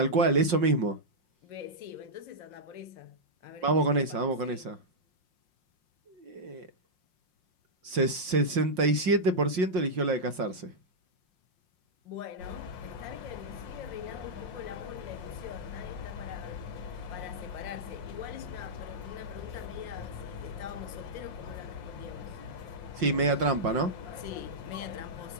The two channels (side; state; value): left; late; 5.6 ms